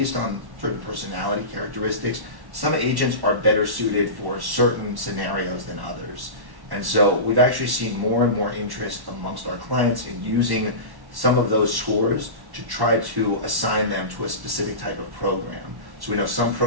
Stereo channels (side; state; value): left; late; 1.1 ms